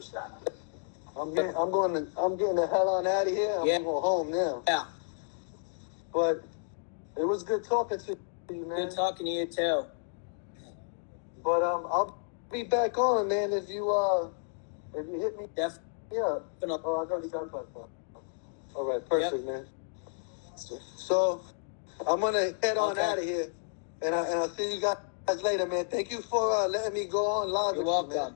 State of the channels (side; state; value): right; silent; digital silence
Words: I'm getting the hell on out of here. I'm going home now. Yeah. But it was good talking to you, man. Good talking to you too. But I'll be back on, man. If you hit me, yeah. Oh, I got that. All right, perfect, man. So I'm gonna head on out of here, and I'll see you guys later, man. Thank you for letting me go on live. You're welcome. You, man.